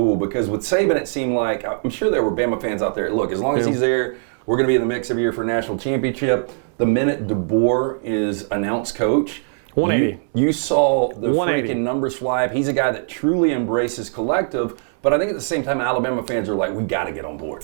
because with Saban, it seemed like I'm sure there were Bama fans out there. Look, as long as he's there, we're going to be in the mix every year for a national championship. The minute DeBoer is announced coach, 180. You saw the 180. freaking numbers fly up. He's a guy that truly embraces collective, but I think at the same time, Alabama fans are like, we got to get on board.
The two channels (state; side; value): silent; left; 65 dB below the other